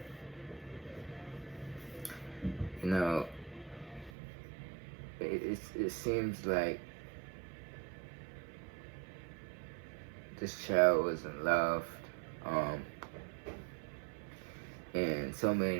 you know, it seems like this child wasn't loved. And so many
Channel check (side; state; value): left; drops out; at 4.1 s